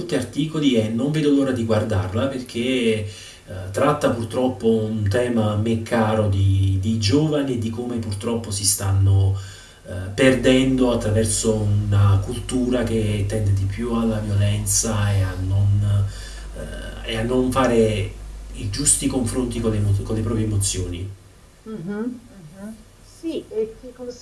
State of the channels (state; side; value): identical; both; correlation 1.00